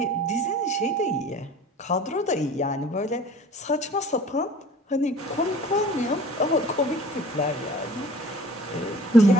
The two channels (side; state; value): both; normal; correlation 0.46